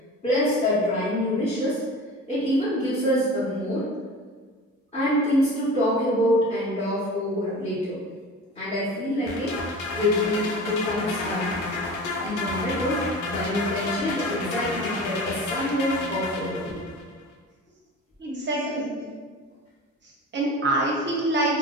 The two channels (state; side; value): normal; both; correlation 0.36